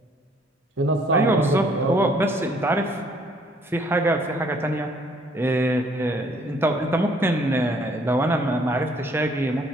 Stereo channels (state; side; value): normal; both; correlation 0.62